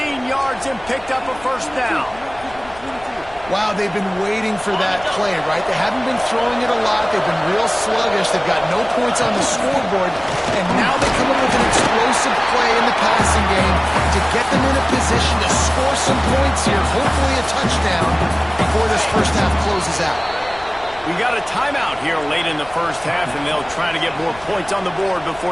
yards and picked up a first down. Wow, they've been waiting for that play, right? They haven't been throwing it a lot. They've been real sluggish. They've got no points on the scoreboard, and now they come up with an explosive play in the passing game to get them in a position to score some points here, hopefully a touchdown before this first half closes out. We got a timeout here late in the first half, and they'll try to get more points on the board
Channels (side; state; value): left; noise; rumble, 22 dB below the sound